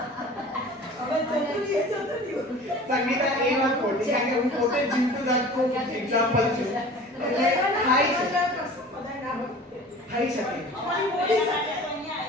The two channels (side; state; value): both; normal; correlation 0.42